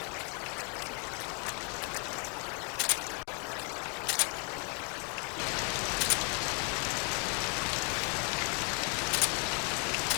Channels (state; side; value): quieter; right; 37.1 dB